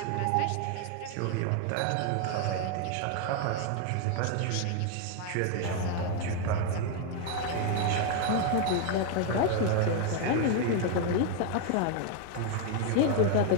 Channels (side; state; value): both; different; correlation 0.01